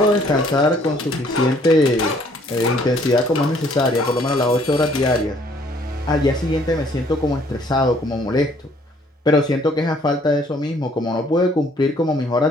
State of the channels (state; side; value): normal; both; correlation 0.62